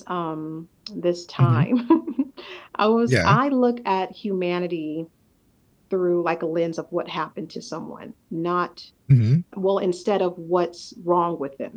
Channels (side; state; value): both; identical; correlation 1.00